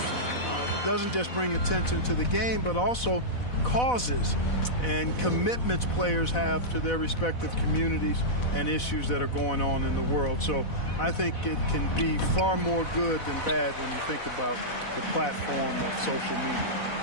It doesn't just bring attention to the game, but also causes and commitments players have to their respective communities and issues that are going on in the world. So I think it can be far more good than bad when you think about the platform of social media.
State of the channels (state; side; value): late; right; 4.1 ms